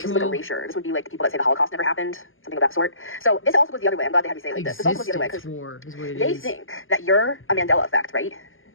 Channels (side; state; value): right; late; 0.59 ms